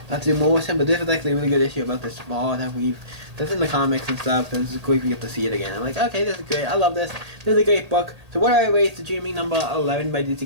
I have to do more with him. But this is actually a really good issue about this ball that's in the comics and stuff. And this is great. We get to see it again. I'm like, okay, this is great. I love this. This is a great book. So what do I rate The Dreaming number 11 by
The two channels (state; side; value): late; left; 1.8 ms